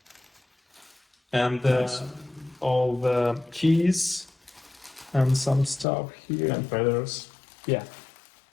and all the keys and some stuff here. And feathers. Yeah.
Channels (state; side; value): drops out; right; at 5.9 s